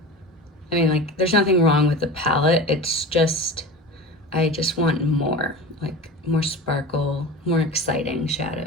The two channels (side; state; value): both; normal; correlation 0.31